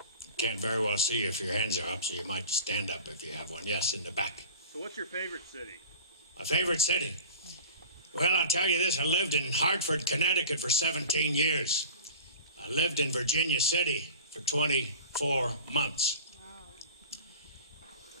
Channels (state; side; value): inverted; both; correlation -0.38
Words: Can't very well see you if your hands are up, so you might stand up if you have one. Yes, in the back. So what's your favorite city? My favorite city? Well, I'll tell you this. I lived in Hartford, Connecticut for 17 years. I lived in Virginia City for 24 months.